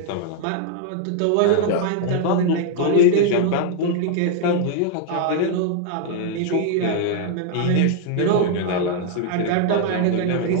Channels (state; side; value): different; both; correlation 0.00